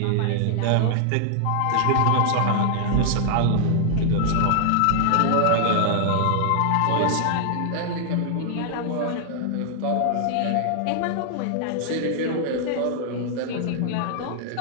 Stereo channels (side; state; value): both; different; correlation 0.00